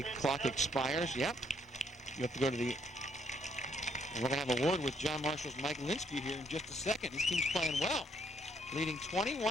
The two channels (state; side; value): normal; both; correlation 0.70